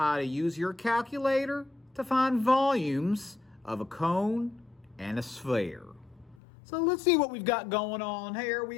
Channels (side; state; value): right; drops out; at 6.4 s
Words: to use your calculator to find volumes of a cone and a sphere. So let's see what we've got going on here. We